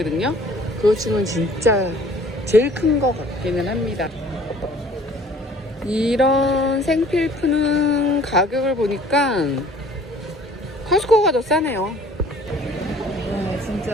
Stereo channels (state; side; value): normal; both; correlation 0.52